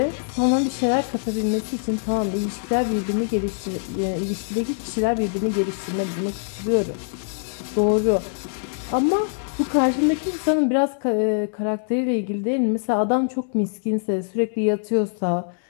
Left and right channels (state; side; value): silent; right; digital silence